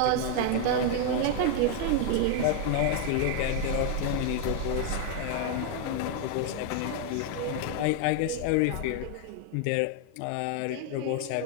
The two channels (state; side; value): different; both; correlation 0.00